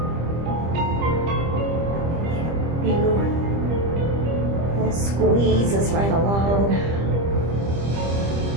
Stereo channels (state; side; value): late; left; 25 ms